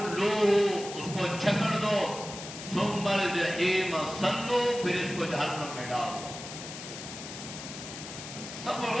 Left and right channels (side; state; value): left; noise; hiss, 10 dB below the sound